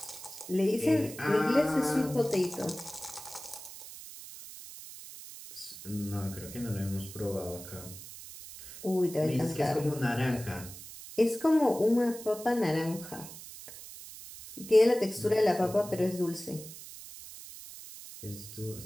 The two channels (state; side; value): noise; right; hiss, 14 dB below the sound